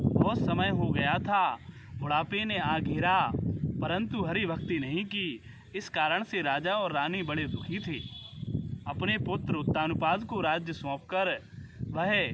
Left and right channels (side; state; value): both; identical; correlation 1.00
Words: समय हो गया था। बुढ़ापे ने आ घेरा, परंतु हरि भक्ति नहीं की। इस कारण से राजा और रानी बड़े दुखी थे। अपने पुत्र उत्तानुपाद को राज्य सौंपकर वह